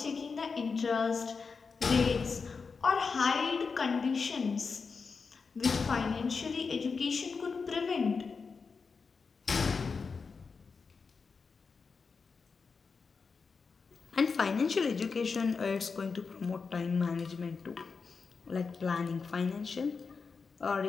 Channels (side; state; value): right; quieter; 5.0 dB